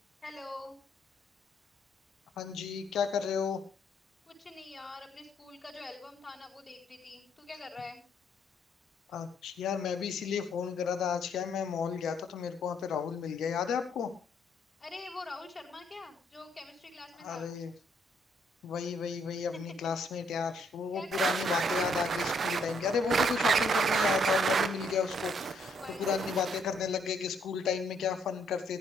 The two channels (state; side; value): normal; both; correlation 0.70